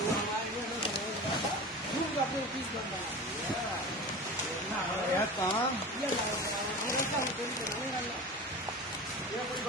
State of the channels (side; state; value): both; normal; correlation 0.32